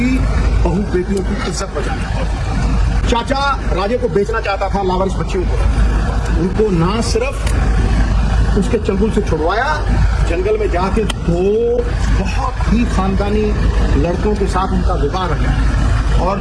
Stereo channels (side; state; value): both; identical; correlation 1.00